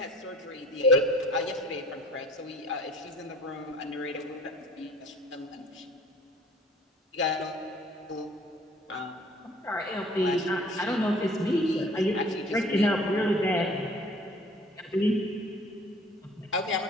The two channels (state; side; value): normal; both; correlation 0.50